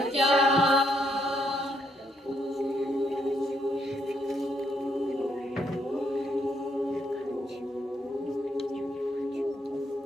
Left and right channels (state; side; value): normal; both; correlation 0.74